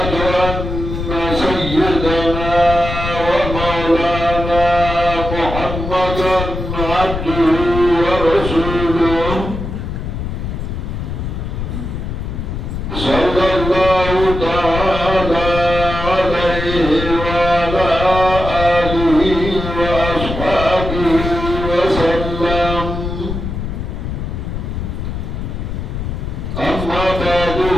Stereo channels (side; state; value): left; noise; rumble, 5 dB below the sound